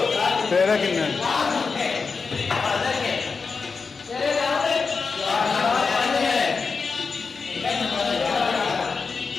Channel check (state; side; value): quieter; right; 4.8 dB